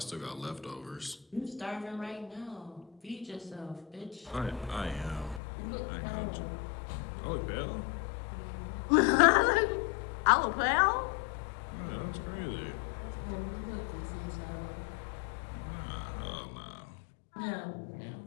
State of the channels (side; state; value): right; drops out; at 5.4 s